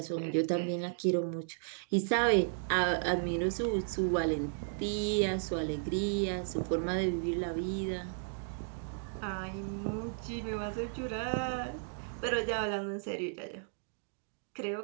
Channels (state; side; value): silent; left; digital silence